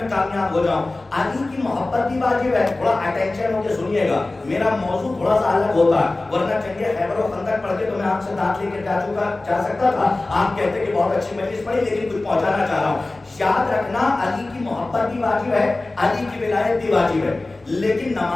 کامیاب ہو جاؤں. علی کی محبت بھی واجب ہے. تھوڑا اٹینشن ہو کے سنیے گا, میرا موضوع تھوڑا سا الگ ہوتا ہے, ورنہ چلیے خیبر و خندق پڑھ کے تو میں آپ سے دانت لے کے جا سکتا تھا. آپ کہتے کہ بہت اچھی مجلس پڑھی, لیکن کچھ پہنچانا چاہ رہا ہوں. یاد رکھنا علی کی محبت بھی واجب ہے, علی کی ولایت بھی واجب ہے, لیکن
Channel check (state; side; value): quieter; right; 3.0 dB